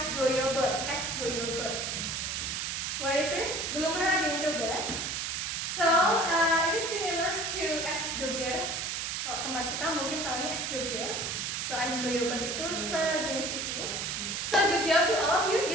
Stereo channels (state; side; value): noise; right; hiss, 2 dB below the sound